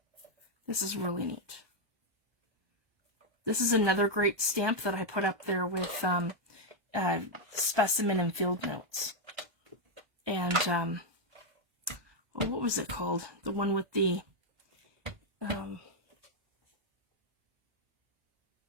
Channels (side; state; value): left; late; 1.2 ms